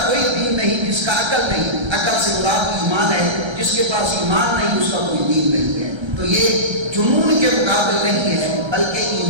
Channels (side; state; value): left; late; 1.3 ms